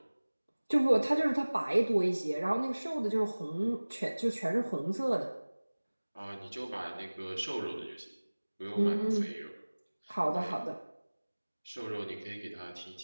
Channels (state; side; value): inverted; both; correlation -1.00